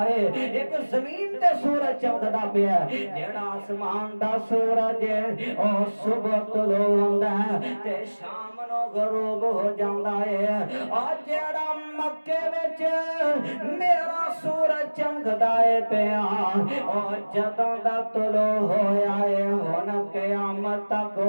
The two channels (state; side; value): inverted; both; correlation -1.00